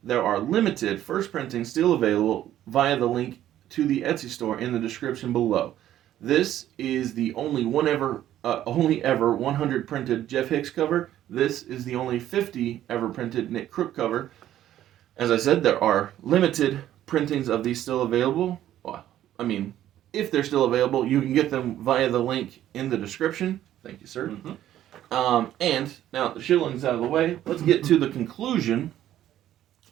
There are limited first printings still available via the link to the Etsy store in the description below. This is the only ever 100 printed Jeff Hicks cover. This is the only 50 ever printed Nick Crook cover. As I said, there are limited printings of these still available. Well, I mean, if they're still available, you can get them via the link in the description. Thank you, sir. Mm-hmm. And now the shillings out of the way, let's get to the conclusion.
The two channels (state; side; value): quieter; left; 12.3 dB